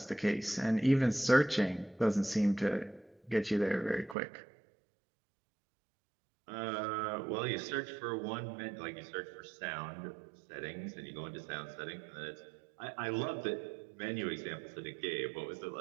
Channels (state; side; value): drops out; left; at 4.2 s